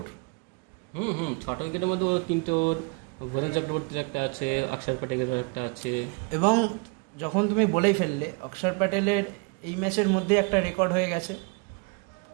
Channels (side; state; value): left; quieter; 32.8 dB